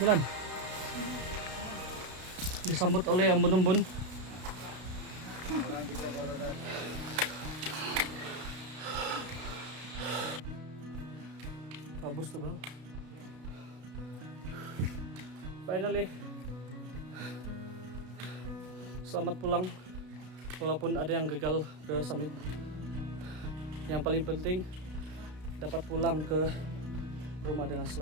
Disambut oleh embun-embun. Bagus tuh bang. Finally, selamat pulang. Walaupun ada yang gagal ke summit, yang paling penting dapat pulang ke rumah dengan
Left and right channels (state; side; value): late; left; 32 ms